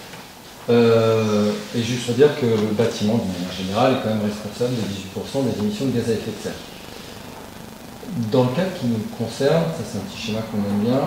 Et juste pour dire que le bâtiment, d'une manière générale, est quand même responsable de 18% des émissions de gaz à effet de serre. Dans le cas qui nous concerne, ça c'est un petit schéma qu'on aime bien,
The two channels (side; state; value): both; identical; correlation 1.00